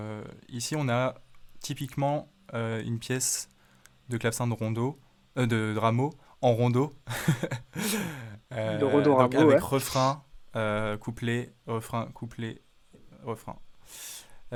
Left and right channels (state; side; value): identical; both; correlation 1.00